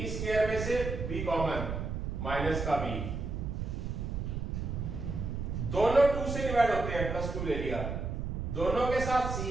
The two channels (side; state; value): right; noise; rumble, 3 dB below the sound